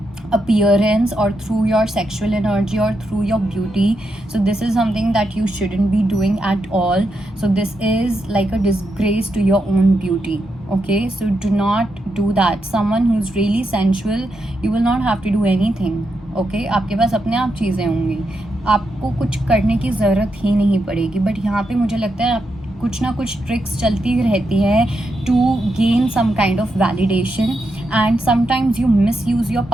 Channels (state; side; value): normal; both; correlation 0.84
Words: appearance, or through your sexual energy, or through your beauty. So this is something that you shouldn't be doing at all. So this is like a disgrace to your own beauty. Okay, so do not do that. Someone who's really sensual, you will not have to do anything. Okay, आपके पास अपने आप चीज़ें होंगी, आपको कुछ करने की ज़रूरत ही नहीं पड़ेगी। बट यहाँ पे मुझे लगता है कुछ ना कुछ ट्रिक्स चलती रहती है to gain some kind of validation, and sometimes you misuse your